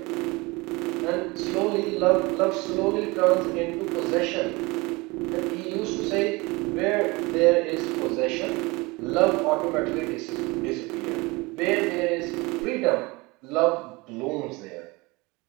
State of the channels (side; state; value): left; quieter; 24.4 dB